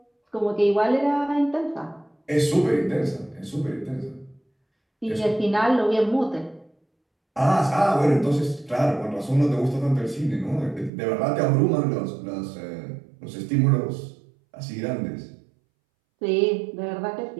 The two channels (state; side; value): drops out; left; at 10.9 s